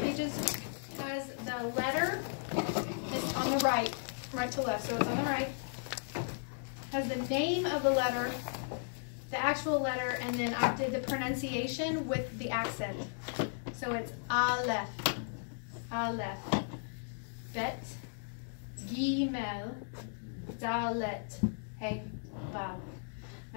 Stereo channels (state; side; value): silent; right; digital silence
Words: pages has the letter. It's on the right to left, so it's on the right. Has the name of the letter, the actual letter, and then I did the pronunciation with the accent. So it's Aleph, Aleph, Bet, Gimel, Dalet, Hey, Vav.